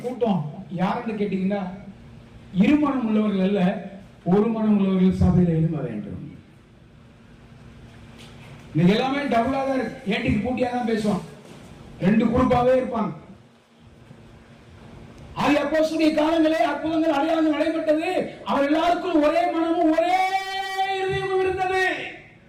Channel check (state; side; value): identical; both; correlation 1.00